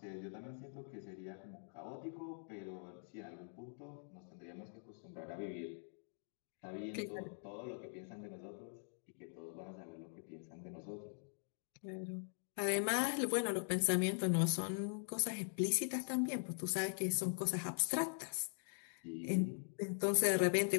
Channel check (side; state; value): right; silent; digital silence